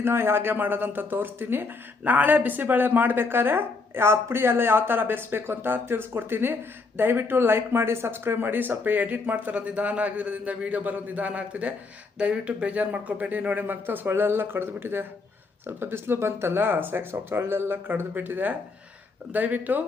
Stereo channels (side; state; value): right; quieter; 4.0 dB